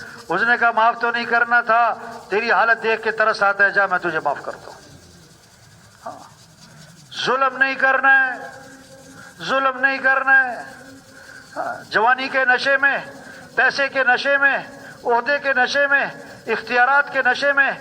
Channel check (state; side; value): identical; both; correlation 1.00